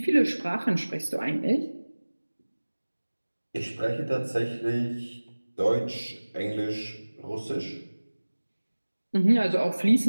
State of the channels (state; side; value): inverted; both; correlation -1.00